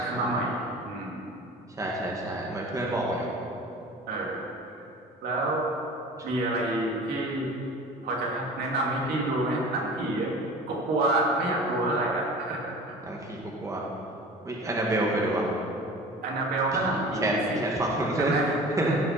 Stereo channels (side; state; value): both; normal; correlation 0.40